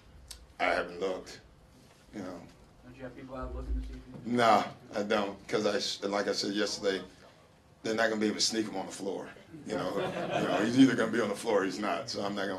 I haven't looked, Don't you have people out looking to see if you... No, I don't, because like I said yesterday, they're not going to be able to sneak him on the floor. He's either going to be on the floor or he's not, so I'm not going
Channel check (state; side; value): identical; both; correlation 1.00